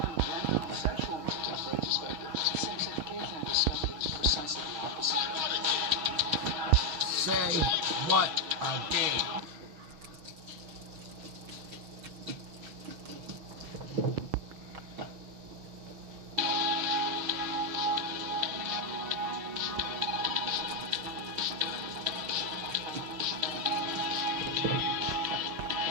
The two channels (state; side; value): late; left; 6.5 ms